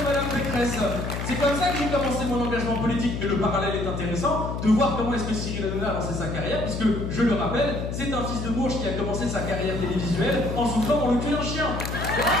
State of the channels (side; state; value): left; noise; hum, 4 dB below the sound